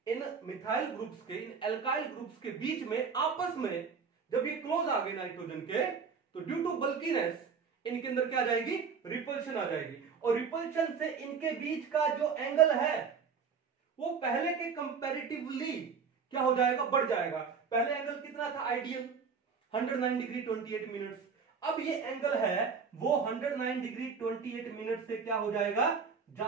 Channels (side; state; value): left; quieter; 5.9 dB